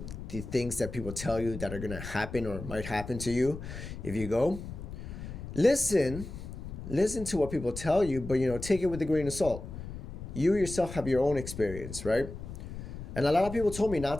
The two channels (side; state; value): left; noise; rumble, 10 dB below the sound